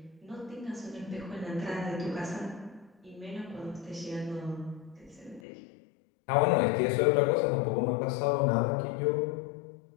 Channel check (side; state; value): right; drops out; at 5.4 s